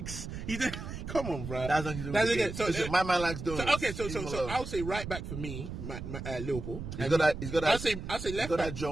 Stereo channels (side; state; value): right; noise; rumble, 7 dB below the sound